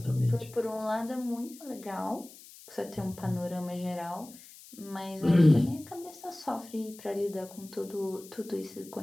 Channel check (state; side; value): noise; left; hiss, 19 dB below the sound